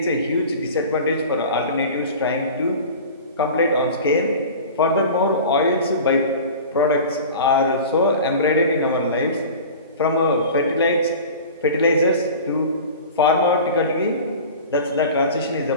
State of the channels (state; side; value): inverted; both; correlation -0.37